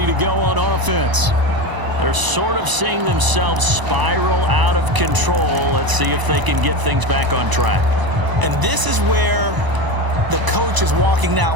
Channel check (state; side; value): late; left; 1.0 ms